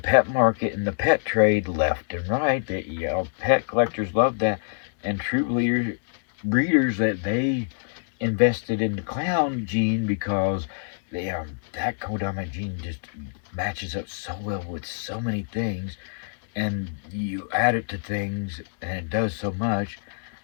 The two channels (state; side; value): silent; right; digital silence